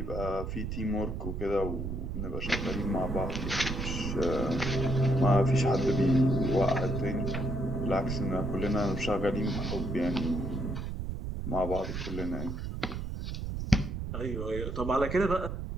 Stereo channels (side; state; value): right; noise; rumble, 4 dB below the sound